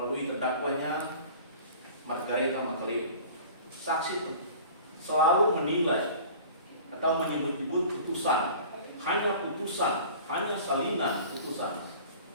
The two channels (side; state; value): both; inverted; correlation -0.43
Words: terdakwanya Margareta Makaleo, saksi selalu menilai atau menyebut-nyebut putusan, hanya salinan putusan,